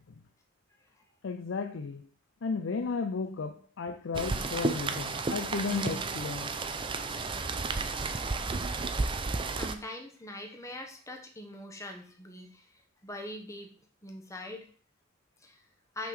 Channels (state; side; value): normal; both; correlation 0.31